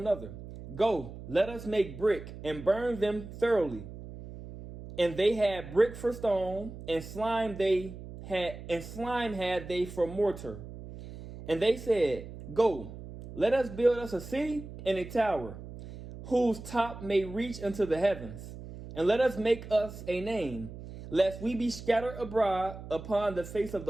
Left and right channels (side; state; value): right; noise; hum, 13 dB below the sound